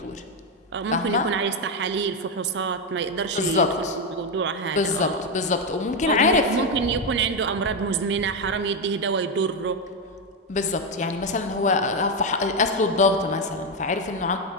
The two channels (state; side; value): normal; both; correlation 0.07